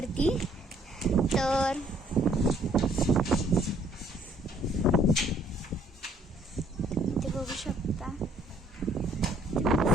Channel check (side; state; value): both; normal; correlation 0.62